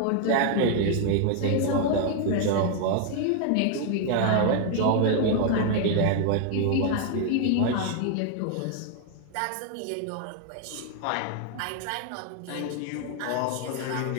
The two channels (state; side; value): different; both; correlation 0.00